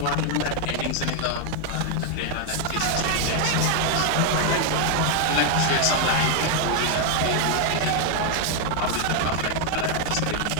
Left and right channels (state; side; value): different; both; correlation 0.01